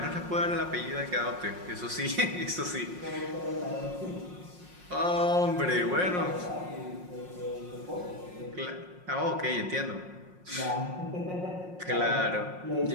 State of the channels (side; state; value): left; late; 5.5 ms